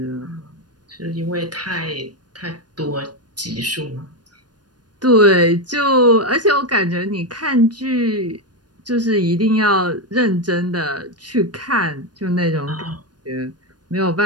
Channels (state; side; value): late; left; 0.69 ms